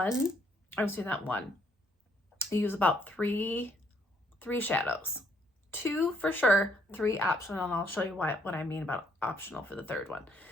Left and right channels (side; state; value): both; normal; correlation 0.69